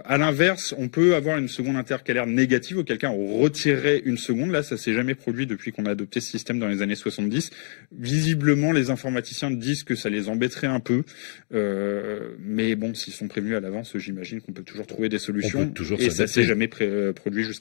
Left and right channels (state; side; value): silent; right; digital silence